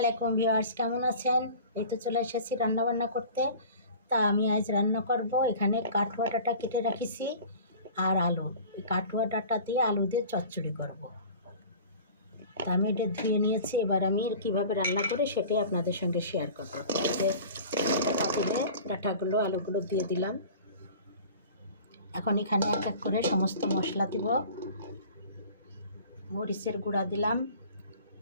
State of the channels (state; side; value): inverted; both; correlation -0.42